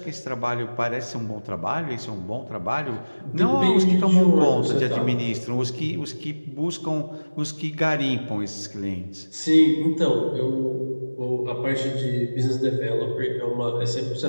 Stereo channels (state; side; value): inverted; both; correlation -1.00